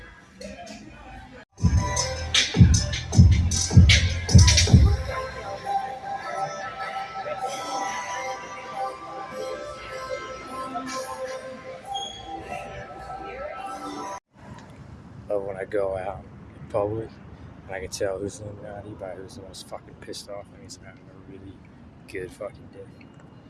But when I go out in public and I can tell who's Illuminati by who's the most fucking pissed off, and he's having a really good fucking day.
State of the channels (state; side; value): identical; both; correlation 1.00